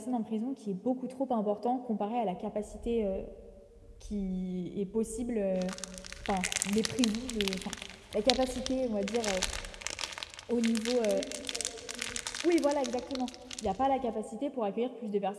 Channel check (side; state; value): both; identical; correlation 1.00